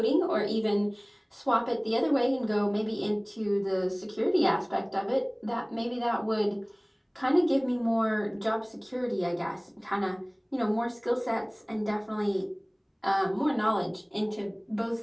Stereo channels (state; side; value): identical; both; correlation 1.00